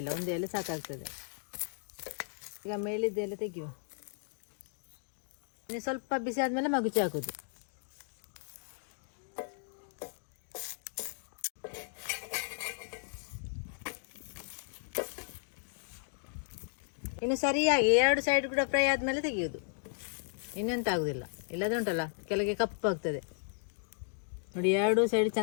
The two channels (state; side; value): silent; right; digital silence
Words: ಇಲ್ಲ, 1 ಎಲೆ ಸಾಕಾಗ್ತದೆ. ಈಗ ಮೇಲಿದ್ದ ಎಲೆ ತೆಗೆಯುವ. ಇನ್ನು ಸ್ವಲ್ಪ ಬಿಸಿ ಆದಮೇಲೆ ಮಗುಚಿ ಹಾಕೋದು. ಇನ್ನು ಸರಿಯಾಗಿ 2 ಸೈಡ್ ಕೂಡ ಫ್ರೈ ಆದಮೇಲೆ ತೆಗೆಯೋದು. ಇನ್ನೆಂತ ಆಗೋದಿಲ್ಲ, ಇಲ್ಲದೆ ಉಂಟಲ್ಲ ಕೆಳಗೆ ಕಪ್ಪಾಗ್ತದೆ ನೋಡಿ. 2 ಸೈಡ್